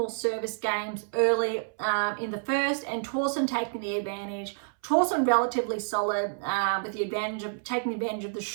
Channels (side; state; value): left; silent; 59 dB below the other